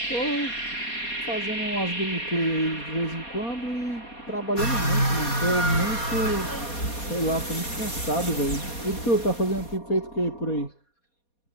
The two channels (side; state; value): right; late; 4.2 ms